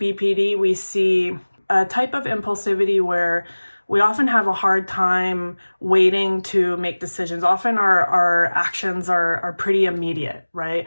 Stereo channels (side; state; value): both; inverted; correlation -1.00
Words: we see a type of impulsivity where we often have a hard time waiting to make decisions. Often our actions are pretty immediate, right?